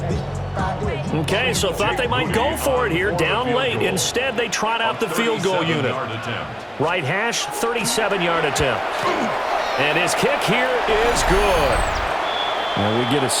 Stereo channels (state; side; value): identical; both; correlation 1.00